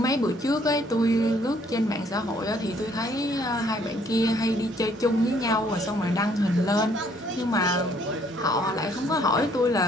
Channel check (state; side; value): normal; both; correlation 0.64